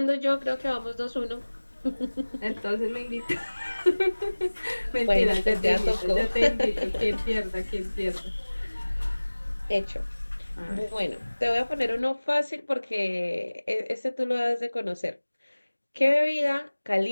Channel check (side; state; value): both; inverted; correlation -1.00